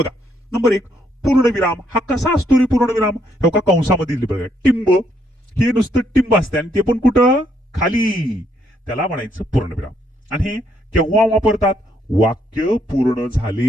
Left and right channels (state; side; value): normal; both; correlation 0.73